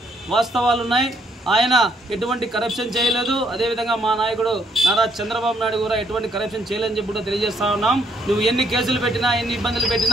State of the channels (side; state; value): both; normal; correlation 0.69